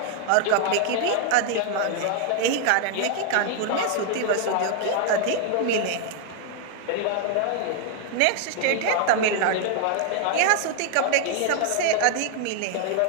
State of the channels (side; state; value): both; different; correlation 0.00